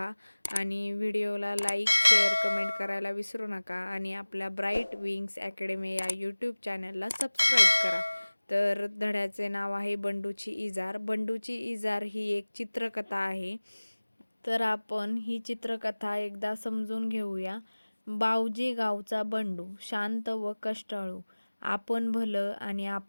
आणि व्हिडिओला लाईक, शेअर, कमेंट करायला विसरू नका आणि आपल्या ब्राईट विंग्स अकॅडमी या यूट्यूब चॅनलला सबस्क्राईब करा. तर धड्याचे नाव आहे बंडूची इजार. बंडूची इजार ही एक चित्रकथा आहे. तर आपण ही चित्रकथा एकदा समजून घेऊया. बावजी गावचा बंडू शांत व कष्टाळू, आपण भलं आणि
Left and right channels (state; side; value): inverted; both; correlation -1.00